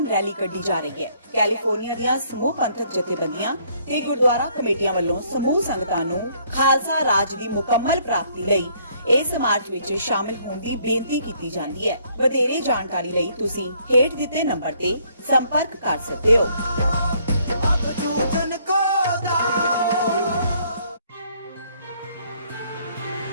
ਰੈਲੀ ਕੱਢੀ ਜਾ ਰਹੀ ਹੈ। ਕੈਲੀਫੋਰਨੀਆ ਦੀਆਂ ਸਮੂਹ ਪੰਥਕ ਜਥੇਬੰਦੀਆਂ ਤੇ ਗੁਰਦੁਆਰਾ ਕਮੇਟੀਆਂ ਵੱਲੋਂ ਸਮੂਹ ਸੰਗਤਾਂ ਨੂੰ ਖਾਲਸਾ ਰਾਜ ਦੀ ਮੁਕੰਮਲ ਪ੍ਰਾਪਤੀ ਲਈ ਇਸ ਮਾਰਚ ਵਿੱਚ ਸ਼ਾਮਿਲ ਹੋਣ ਦੀ ਬੇਨਤੀ ਕੀਤੀ ਜਾਂਦੀ ਹੈ। ਵਧੇਰੇ ਜਾਣਕਾਰੀ ਲਈ ਤੁਸੀਂ ਹੇਠ ਦਿੱਤੇ ਨੰਬਰ ਤੇ ਸੰਪਰਕ ਕਰ ਸਕਦੇ ਹੋ।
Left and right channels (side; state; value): both; inverted; correlation -0.65